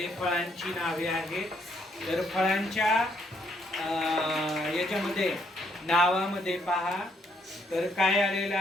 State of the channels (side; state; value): both; normal; correlation 0.71